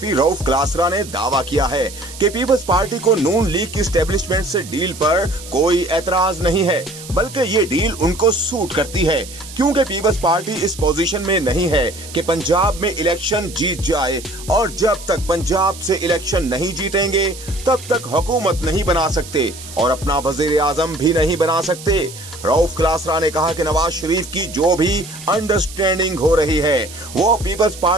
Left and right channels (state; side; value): noise; right; hiss, 15 dB below the sound